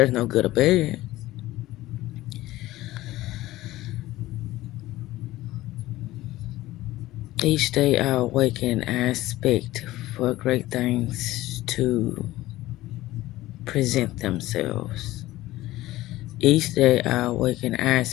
no good or bad. Each day I awaken, I expect for great things to present themselves. Each day I awaken, I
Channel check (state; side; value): quieter; right; 16.7 dB